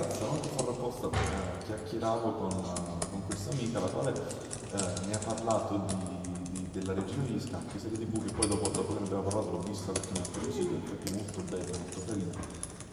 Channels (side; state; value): both; identical; correlation 1.00